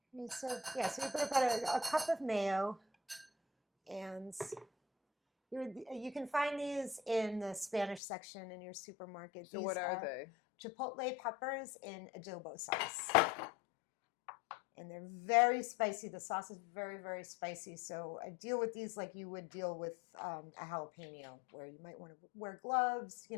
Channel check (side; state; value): right; drops out; at 8.0 s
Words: Okay, so we put about a cup of mayo, and you can find these in the Spanish section in your supermarket. So these what are they? Chipotle peppers in adobo sauce. And they're very spicy. The sauce is very, very spicy. So I deal with these like you would deal with a jalapeno, where you might want to wear gloves.